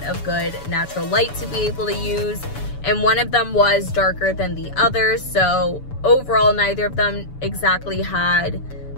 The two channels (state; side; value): late; right; 7.0 ms